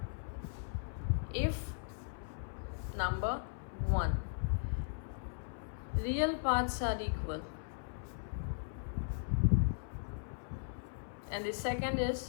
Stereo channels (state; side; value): silent; right; 53 dB below the other